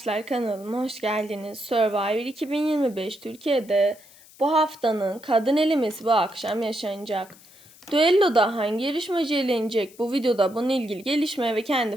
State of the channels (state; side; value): noise; left; hiss, 24 dB below the sound